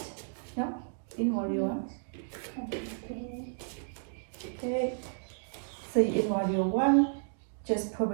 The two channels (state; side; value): silent; left; digital silence